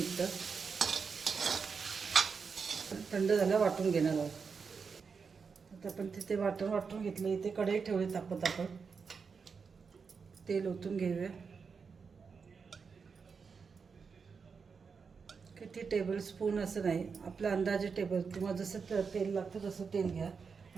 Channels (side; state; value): left; quieter; 5.5 dB